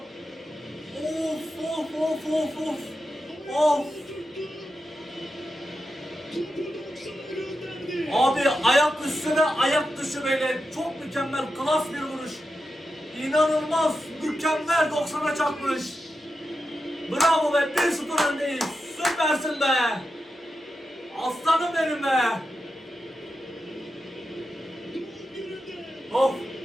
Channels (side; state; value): both; normal; correlation 0.89